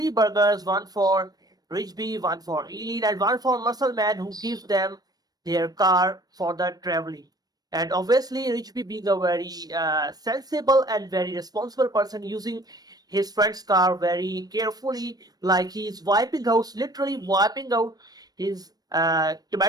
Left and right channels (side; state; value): left; late; 0.19 ms